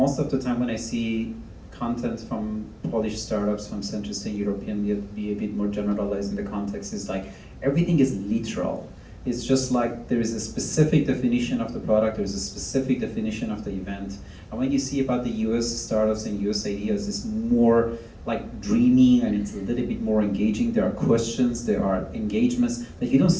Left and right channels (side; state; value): both; identical; correlation 1.00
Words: of the time when I see content from Polish startups, from Central Eastern European, be a bit more generalized in the context, is like everything is literal. It's just like there is a specific definition of the product, there's a specific definition of the event. And when you see about the US startups and US ideas, it's more like dreamy and it's a little bit more engaging. There are questions, there are engagements that you don't